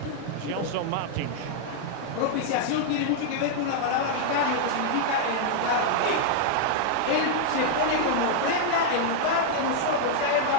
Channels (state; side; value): different; both; correlation -0.01